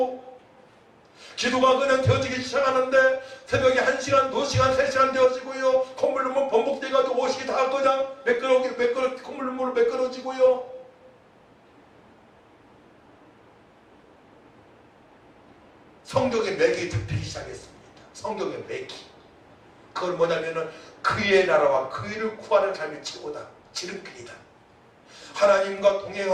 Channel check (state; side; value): identical; both; correlation 1.00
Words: 기도가 그냥 되어지기 시작하는데 새벽에 1시간, 2시간, 3시간 되어지고요. 콧물 눈물 번복돼가지고 옷이 다 그냥 콧물 눈물로 매끄러지고요. 성경의 맥이 잡히기 시작했습니다. 성경의 맥이. 그건 뭐냐면은 그의 나라와 그 일을 구하는 삶이 최고다. 지름길이다. 하나님과